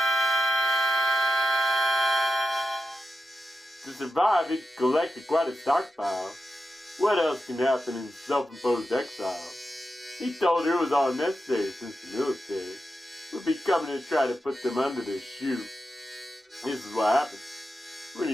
To survive, he collected quite a stockpile. What else can happen in self-imposed exile? He told her it was all necessary since the military would be coming to try to put them under their shoe. This is what happens when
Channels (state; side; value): normal; both; correlation 0.89